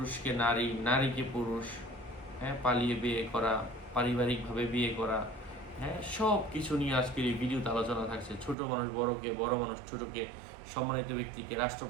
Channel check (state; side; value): drops out; left; at 8.6 s